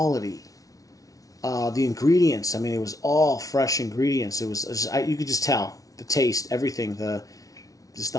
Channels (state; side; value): late; right; 0.17 ms